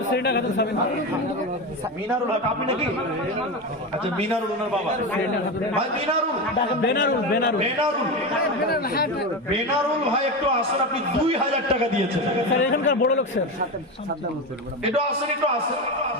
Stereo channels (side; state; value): both; normal; correlation 0.19